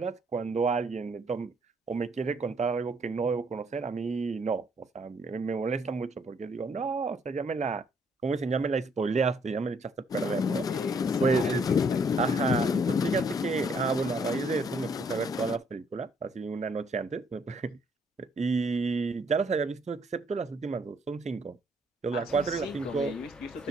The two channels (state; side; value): normal; both; correlation 0.67